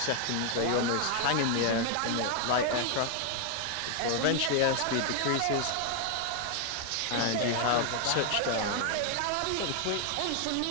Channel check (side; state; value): both; different; correlation 0.00